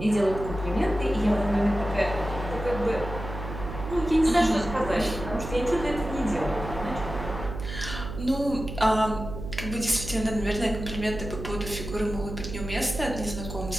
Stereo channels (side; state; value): right; noise; hum, 8 dB below the sound